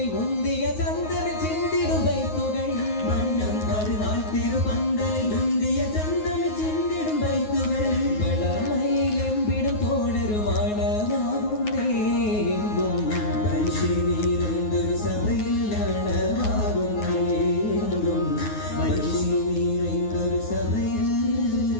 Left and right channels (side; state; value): right; late; 9.5 ms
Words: മുന്തിയ ചന്ദനം ചിന്തിടും ബൈത്തുകൾ വണ്ണം പരുനാൾ തിരുപന്തലിൽ മുന്തിയ ചന്ദനം ചിന്തിടും ബൈത്തുകൾ വളമയിലെമ്പിടും തോഴരുമാണമാകുന്നേ എങ്കും മനുഷ്യനീരെന്തൊരു സഭയിലാണമാകുന്നേ എങ്കും മനുഷ്യനീരെന്തൊരു സഭയിൽ